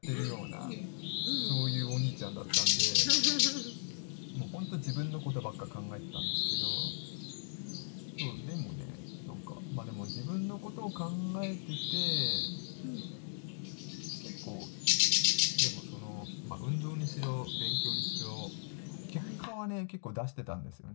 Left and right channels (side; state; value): right; silent; digital silence